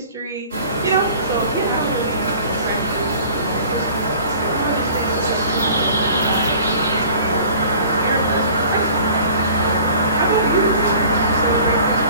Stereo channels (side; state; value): both; inverted; correlation -0.47